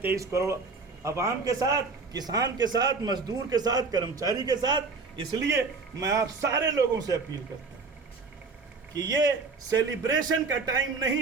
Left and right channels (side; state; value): left; quieter; 4.3 dB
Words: 23 करोड़ अवाम के साथ, किसान के साथ, मजदूर के साथ, कर्मचारी के साथ। इसलिए मैं आप सारे लोगों से अपील करता हूँ कि ये सेलिब्रेशन का टाइम नहीं